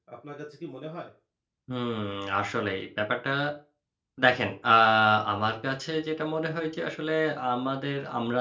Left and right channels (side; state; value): both; identical; correlation 1.00